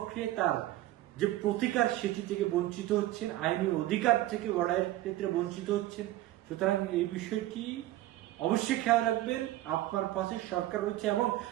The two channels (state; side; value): quieter; left; 15.4 dB